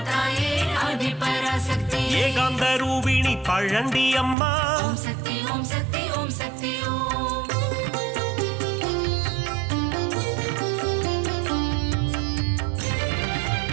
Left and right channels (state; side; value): drops out; left; at 4.4 s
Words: தாயே ஆதிபராசக்தி ஏகாந்த ரூபிணி பழண்டி அம்மா ஓம் சக்தி ஓம் சக்தி ஓம் சக்தி ஓம்